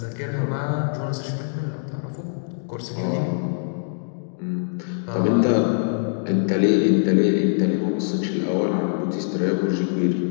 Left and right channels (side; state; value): right; silent; digital silence